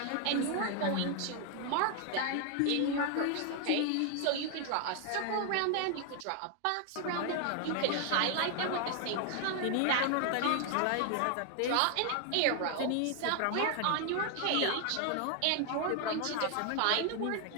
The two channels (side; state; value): both; different; correlation 0.00